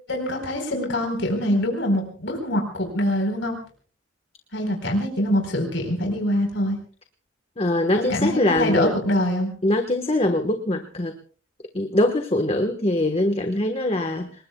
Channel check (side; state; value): both; normal; correlation 0.53